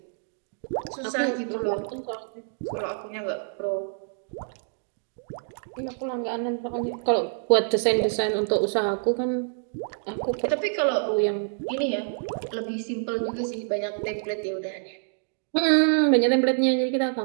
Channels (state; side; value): silent; left; digital silence